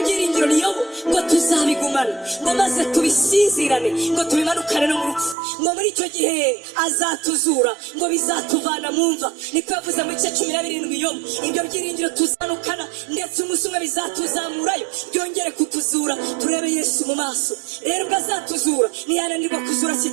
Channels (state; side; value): drops out; left; at 5.4 s